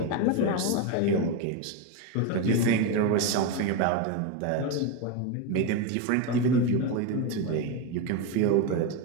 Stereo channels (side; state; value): both; different; correlation 0.04